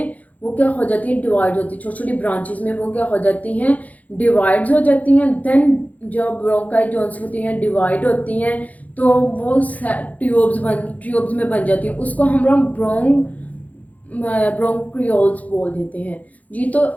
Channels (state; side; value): late; right; 0.074 ms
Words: वो क्या हो जाती है? डिवाइड होती है। छोटी छोटी ब्रांचेस में वो क्या हो जाती हैं? डिवाइड्स हो जाती हैं। देन जब ब्रोंकाई जोन्स होती हैं डिवाइड होती हैं तो वो ट्यूब्स में बन जाती है। उसको हम लोग ब्रोंक्रियोल्स बोल देते हैं जी। तो